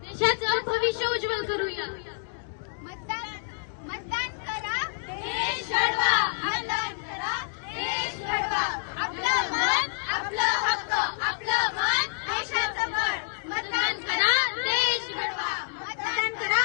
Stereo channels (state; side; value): silent; right; digital silence